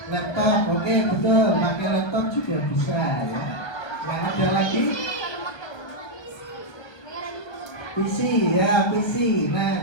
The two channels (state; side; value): late; right; 1.2 ms